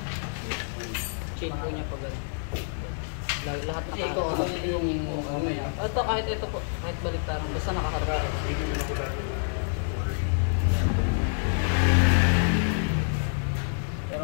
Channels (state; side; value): silent; right; 60 dB below the other